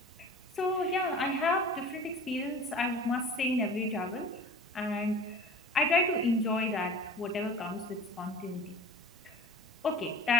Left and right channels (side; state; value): both; normal; correlation 0.40